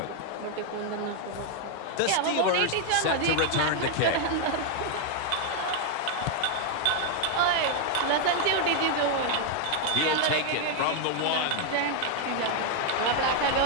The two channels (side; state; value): both; different; correlation 0.00